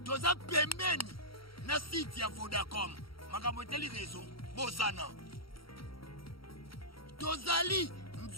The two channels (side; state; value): right; late; 0.74 ms